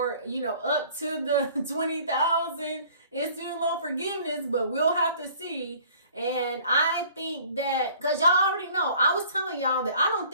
up to the $20,000 in student loan forgiveness, but we'll have to see. And I think that, because y'all already know, I was telling y'all that I don't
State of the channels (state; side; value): inverted; both; correlation -0.52